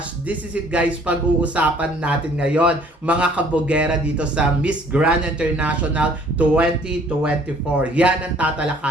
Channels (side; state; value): both; normal; correlation 0.57